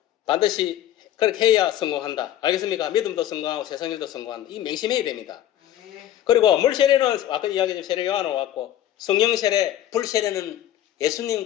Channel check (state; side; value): quieter; right; 12.3 dB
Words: 반드시 그렇게 해야 성공한다. 알겠습니까? 믿음도 성공하고 세상 일도 성공한다. 이 명심해야 됩니다. 그리고 물 세례는 아까 이야기했던 세례 요한으로 왔고, 성령 세례, 불 세례는